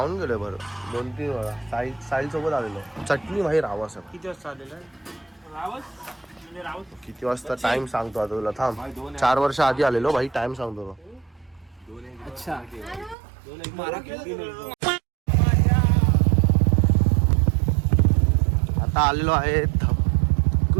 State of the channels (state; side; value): drops out; left; at 13.2 s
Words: गेलोय बरं 2-3 वेळा. साहिल सोबत आलेलो. चटणी भाई रावस आहे. किती वाजता आलेलं रावस? किती वाजता टाइम सांगतो आता तुला, थांब. 4 वर्ष आधी आलेलो भाई, टाइम सांगतो. अच्छा, आता आलेलो आहे